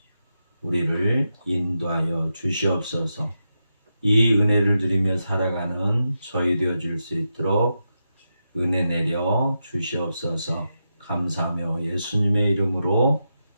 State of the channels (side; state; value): both; inverted; correlation -0.87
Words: 우리를 인도하여 주시옵소서. 이 은혜를 누리며 살아가는 저희 되어줄 수 있도록 은혜 내려 주시옵소서. 감사하며 예수님의 이름으로